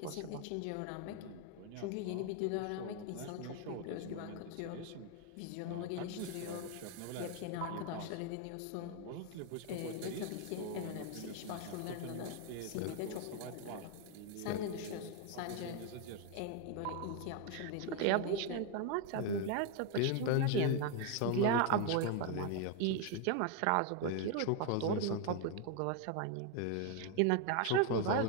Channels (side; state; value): both; different; correlation 0.01